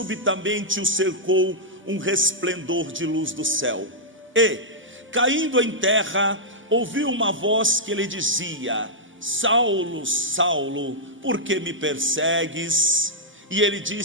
o cercou um resplendor de luz do céu. E, caindo em terra, ouviu uma voz que lhe dizia: Saulo, Saulo, por que me persegues? E ele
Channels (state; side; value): normal; both; correlation -0.10